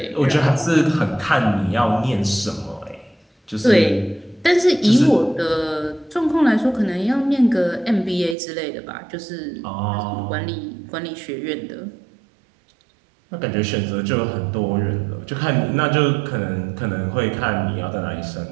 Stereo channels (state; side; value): drops out; left; at 8.3 s